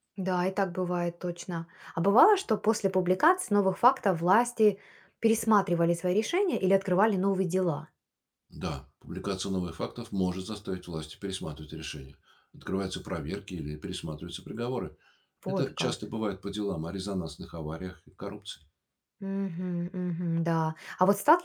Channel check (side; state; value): both; identical; correlation 1.00